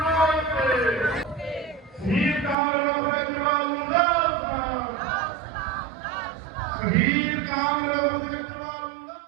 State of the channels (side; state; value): left; drops out; at 2.6 s